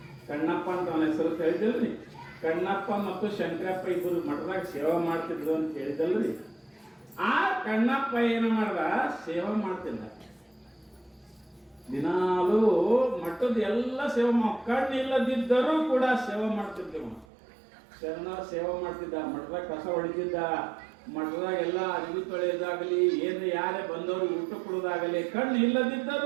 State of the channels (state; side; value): drops out; left; at 17.2 s